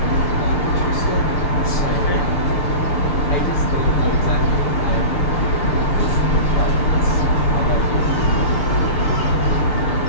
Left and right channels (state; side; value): late; right; 6.7 ms